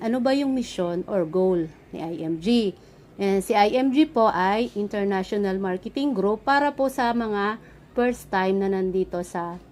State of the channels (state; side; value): identical; both; correlation 1.00